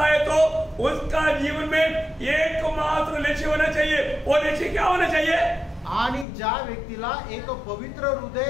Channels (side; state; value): right; drops out; at 6.2 s